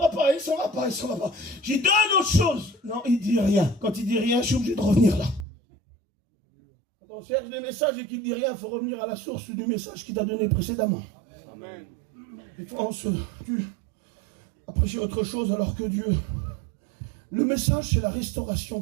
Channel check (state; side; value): drops out; left; at 5.5 s